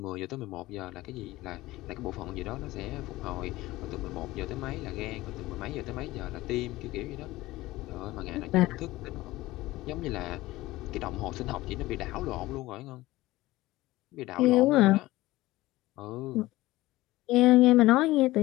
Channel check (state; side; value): quieter; right; 18.1 dB